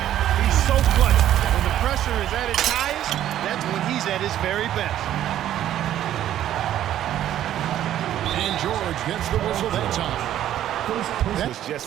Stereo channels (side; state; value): left; quieter; 11.8 dB